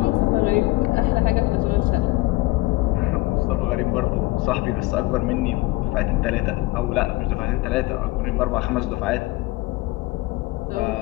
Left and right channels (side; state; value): right; quieter; 20.4 dB